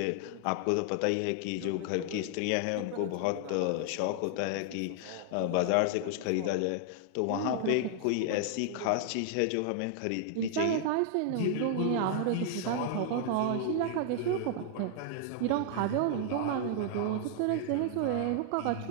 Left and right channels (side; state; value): both; different; correlation 0.00